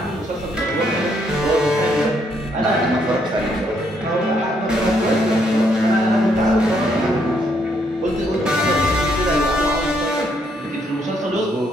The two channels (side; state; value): both; normal; correlation 0.72